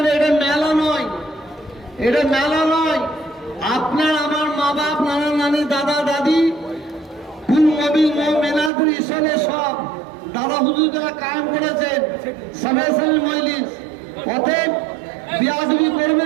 এটা মেলা নয়, এটা মেলা নয়। আপনার আমার মা বাপ, নানা নানি, দাদা দাদি, কুল মবিল মেনাদুর ইসলে সব দাদা হুজুর যারা কায়েম করেছেন সবাই মজলিস। অতএব বিয়াদবি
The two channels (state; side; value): drops out; left; at 8.7 s